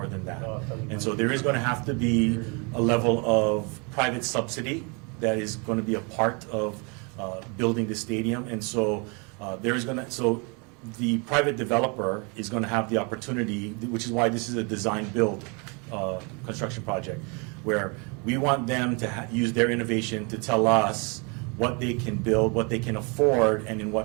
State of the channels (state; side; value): quieter; left; 32.5 dB